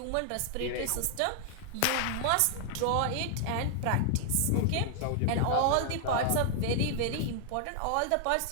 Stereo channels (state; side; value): different; both; correlation -0.01